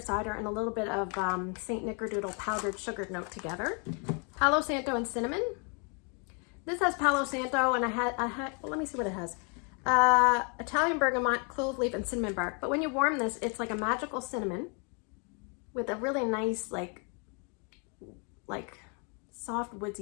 and a little bit of St. Nickerdoodle powdered sugar note together. Palo Santo and cinnamon. This has Palo Santo, and I had well, let me see what it has. Italian bergamot, clove leaf, and cinnamon bark. But when you warm this, it's like a magical cinnamon with a really nice, like soft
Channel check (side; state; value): right; quieter; 36.5 dB